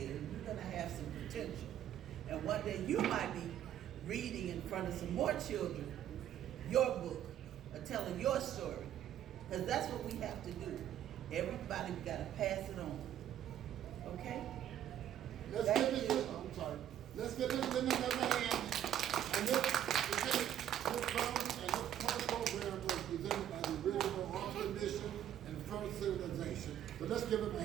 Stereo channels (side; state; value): left; quieter; 11.0 dB